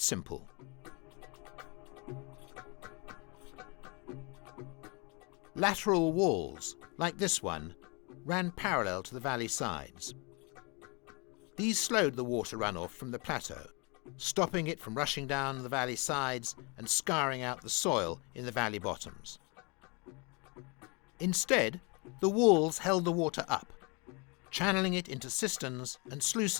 Lateral walls, like this one, ran parallel to the valley sides. These slowed the water runoff from the plateau, stopping it from rushing down the valley sides and scouring out the soil in the valley bottoms. Instead, the walls held the water up, channeling it into cisterns and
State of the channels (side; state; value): right; quieter; 30.7 dB